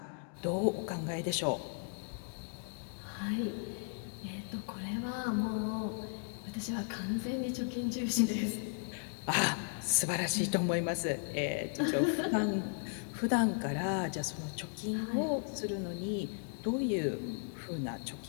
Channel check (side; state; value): right; silent; 54 dB below the other